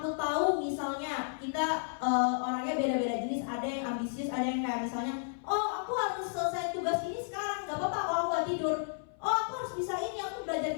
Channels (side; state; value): right; silent; 56 dB below the other